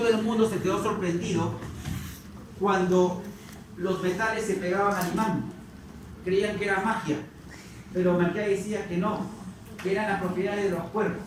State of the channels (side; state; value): both; identical; correlation 1.00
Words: el mundo se quedó sorprendido cuando los metales se pegaban al imán. Creían que era magia, pero Melquiades decía que no, que eran las propiedades de los cuervos.